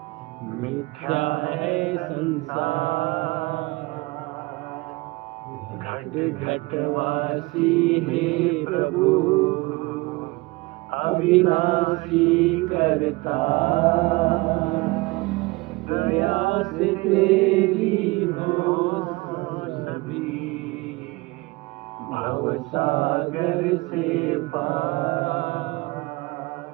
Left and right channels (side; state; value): left; quieter; 23.5 dB